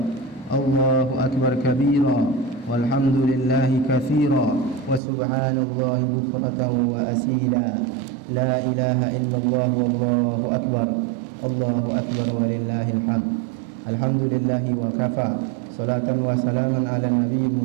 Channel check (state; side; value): drops out; left; at 5.0 s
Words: Allahu Akbar kabira, walhamdulillahi katsira, wa subhanallahi bukratan wa asila, la ilaha illallah wallahu akbar, Allahu Akbar walillahil hamd. Alhamdulillahi wa kafa, salatan wa salaman ala nabiyyil